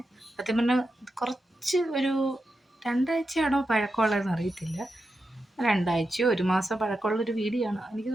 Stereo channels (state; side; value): normal; both; correlation 0.89